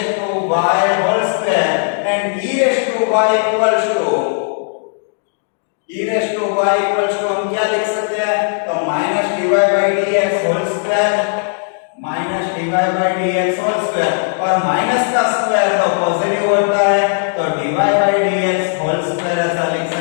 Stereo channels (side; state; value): right; silent; digital silence